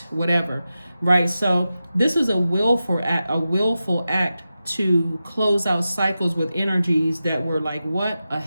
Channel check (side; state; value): both; inverted; correlation -0.92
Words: whatever, right? So this is a willful act to close out cycles with energies that were like, what, a